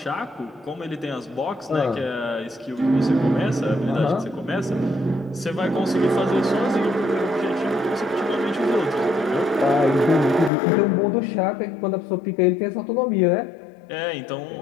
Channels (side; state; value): right; drops out; at 10.5 s